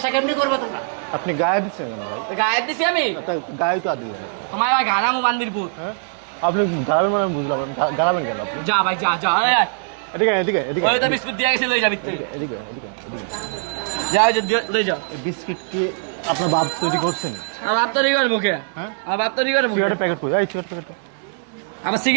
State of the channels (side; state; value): left; silent; digital silence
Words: কেমনি করবে তোমরা আপনি গায়ে দিচ্ছেন কেন ভাই? গায়ে দিছি আমি তা গায়ে তো আর দিলেন না। তোমার ভাই গারামু বান্দিরপুর হ্যাঁ আপনি গাড়াবেন মানে আমি বুঝলাম। আপনি গাড়াবেন কেন আপনি? যা ভাই যা যা এই, এই। এদিকে এদিকে এদিকে ওই তো বিস্কুট দিয়ে গেছে লই যাবি তুই এদিকে এদিকে এদিকে। যা ওই যে লই যা এই বিস্কিট কি আপনার বাপ তৈরি করছেন? আমার বাপ তো রিগার মুখে হ্যাঁ আমার বাপ তো রিগার মুখে সিগারেটের প্যাকেট কই? এই সিগারেট প্যাকেট আমার